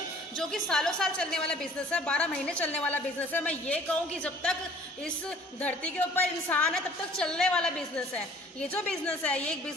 जो कि सालों साल चलने वाला बिजनेस है, 12 महीने चलने वाला बिजनेस है। मैं ये कहूँ कि जब तक इस धरती के ऊपर इंसान है तब तक चलने वाला बिजनेस है। ये जो बिजनेस है ये एक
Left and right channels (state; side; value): normal; both; correlation 0.52